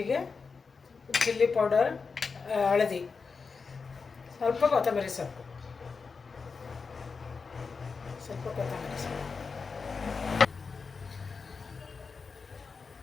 ಚಿಲ್ಲಿ ಪೌಡರ್, ಹಳದಿ, ಸ್ವಲ್ಪ ಕೊತ್ತಂಬರಿ ಸೊಪ್ಪು.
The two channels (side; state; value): right; quieter; 4.9 dB